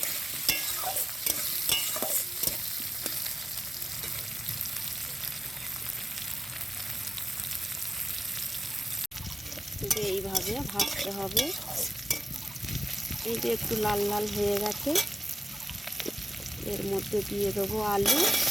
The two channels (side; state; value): both; normal; correlation 0.95